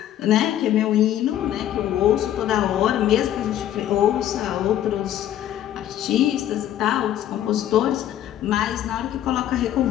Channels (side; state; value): right; quieter; 11.6 dB